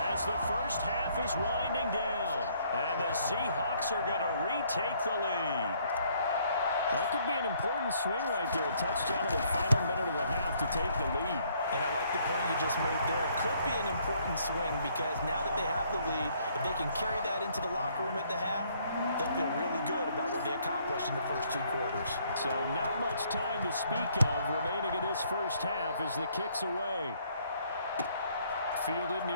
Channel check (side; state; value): both; inverted; correlation -0.66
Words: as the first half is winding down. And the Seahawks are going to retake the lead. That could be an important swing right there. A touchdown in the final minute of the half to take the lead. And I like the point you just made there. Could be an important swing because now that they have the lead, if they can carry that into the locker room at the half, they'll feel really good about what they accomplished in the first 2 quarters. So not much time to speak of remaining in this first half as the kick's away. Fielded